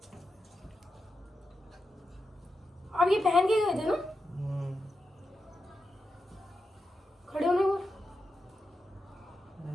अब ये पहन के गए थे ना? खड़े होने को,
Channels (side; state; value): both; normal; correlation 0.89